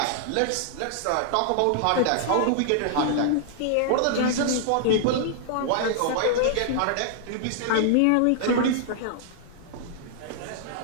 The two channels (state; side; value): different; both; correlation -0.01